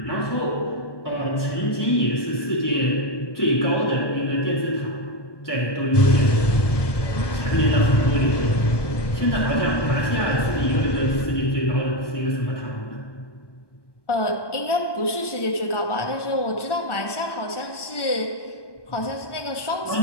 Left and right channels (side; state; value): right; late; 1.2 ms